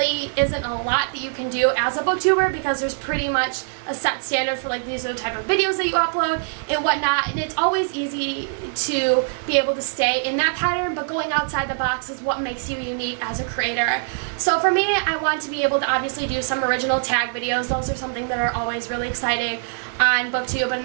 isn't a lot that you can do as a booktuber, because there's pretty much a set standard for, like, these are the type of videos that you upload and whatnot, and it's always easy to be able to stay in that pattern, but going outside the box is what makes you unique as a creator. So for me, I want to be able to obviously do some original tag videos. Those are something that are always really exciting on BookTube, and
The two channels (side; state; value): left; silent; digital silence